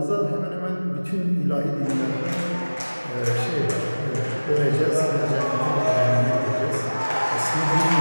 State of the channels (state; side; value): inverted; both; correlation -1.00